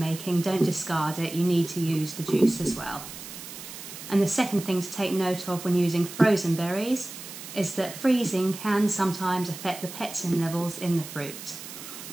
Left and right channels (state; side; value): noise; right; hiss, 12 dB below the sound